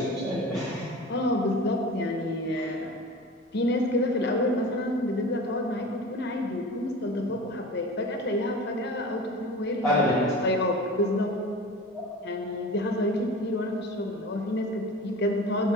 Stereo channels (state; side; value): normal; both; correlation 0.36